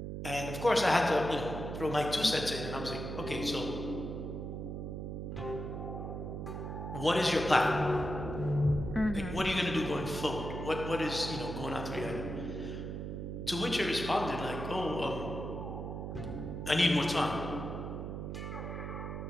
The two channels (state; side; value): noise; right; hum, 5 dB below the sound